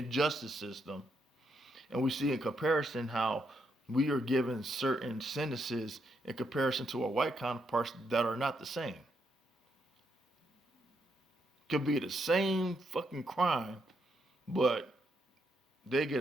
system, and we see in comparison how we are given certain sentences in comparison to our white counterparts that are not the same. Could be the same fucking crime, but they get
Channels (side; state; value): both; normal; correlation 0.79